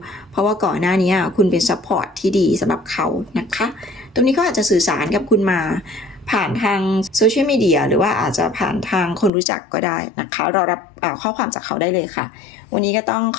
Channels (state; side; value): drops out; right; at 9.3 s